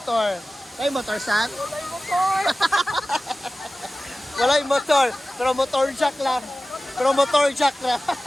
Kay motor, San? Walay motor. Wala yung motor, pero motor jack lang. Pero motor jack lang.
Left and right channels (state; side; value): normal; both; correlation 0.96